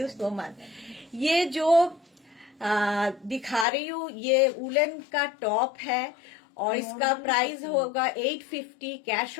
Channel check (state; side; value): drops out; right; at 3.7 s